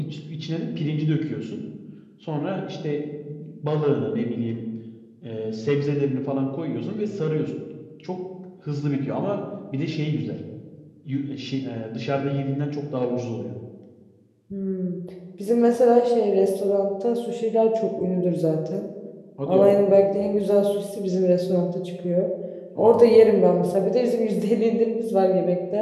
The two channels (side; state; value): both; identical; correlation 1.00